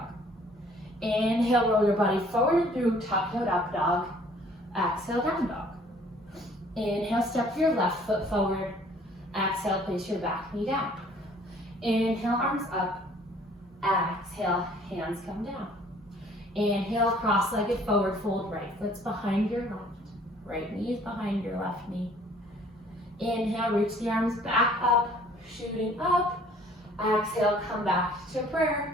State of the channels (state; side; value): normal; both; correlation 0.56